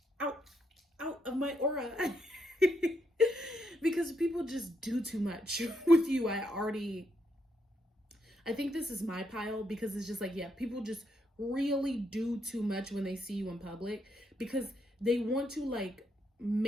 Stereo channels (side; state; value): both; normal; correlation 0.78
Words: out of my aura. Because people just do too much with you. I think this is my pile, because it's just like, yeah, people just really do too much when they see you in public, because they want to like